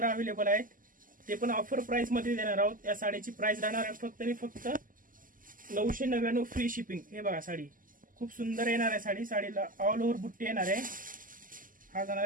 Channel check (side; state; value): left; late; 0.40 ms